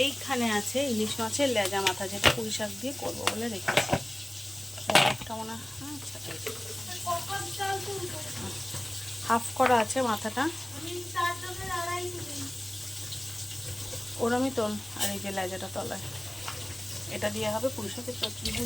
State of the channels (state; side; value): noise; right; hum, 27 dB below the sound